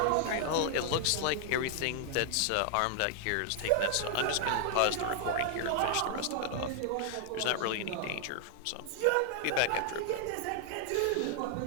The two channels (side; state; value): both; different; correlation 0.00